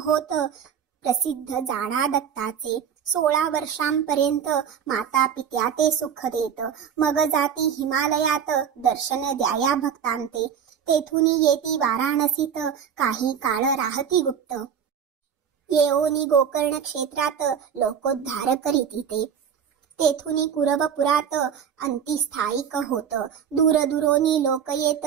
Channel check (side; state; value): left; quieter; 7.9 dB